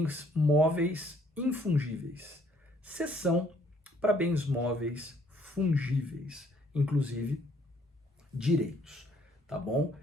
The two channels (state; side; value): normal; both; correlation 0.64